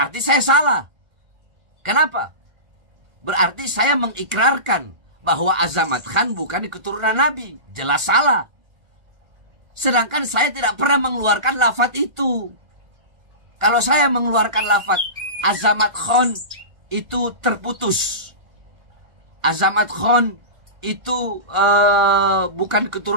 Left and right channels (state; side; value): late; left; 1.4 ms